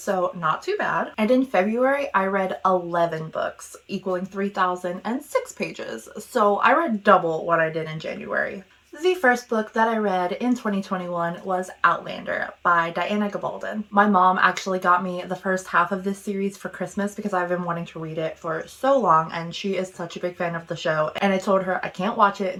not too bad. And in February, I read 11 books, equaling 3,006 pages, so I read double what I did in January. The first book that I read in 2021 was Outlander by Diana Gabaldon. My mom actually got me the first half of this series for Christmas because I've been wanting to read it for so long, and she is such a big fan of the show, and I told her I can't watch it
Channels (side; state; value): both; identical; correlation 1.00